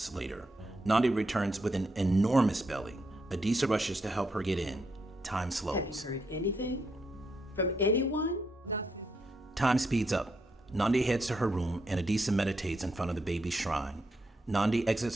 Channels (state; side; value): normal; both; correlation 0.80